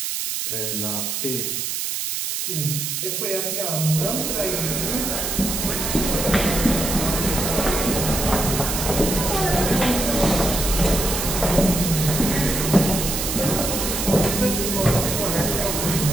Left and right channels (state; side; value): noise; right; hiss, 2 dB below the sound